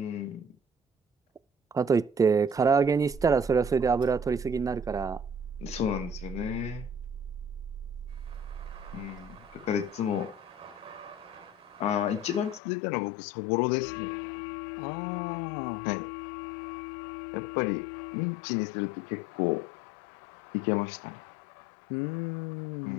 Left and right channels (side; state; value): right; drops out; at 12.6 s